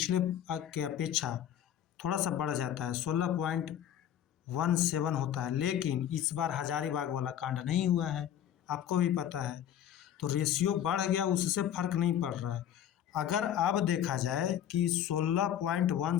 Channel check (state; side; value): quieter; right; 10.4 dB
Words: के अपेक्षा थोड़ा सा बढ़ जाता है, 16.17 होता है। लेकिन इस बार हजारीबाग वाला कांड नहीं हुआ है, आपको भी पता है, तो रेशियो बढ़ गया, उससे फर्क नहीं पड़ रहा है। अगर अब देखा जाए कि